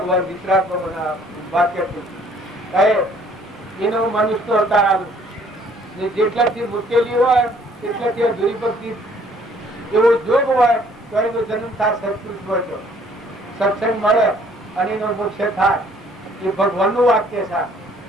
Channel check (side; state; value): both; normal; correlation 0.60